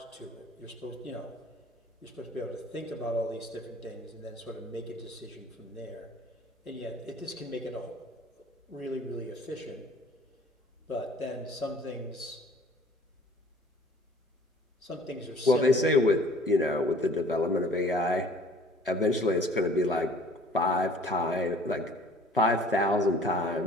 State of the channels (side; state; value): both; normal; correlation 0.52